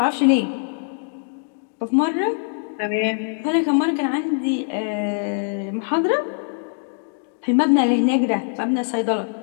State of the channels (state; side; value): silent; right; digital silence